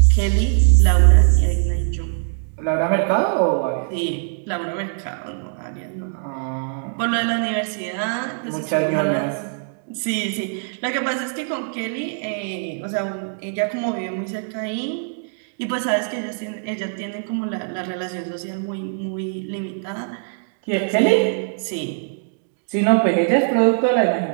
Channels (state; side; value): silent; left; digital silence